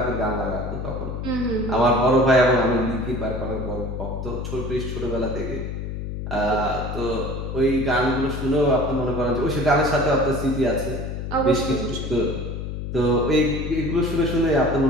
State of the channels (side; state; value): left; noise; hum, 6 dB below the sound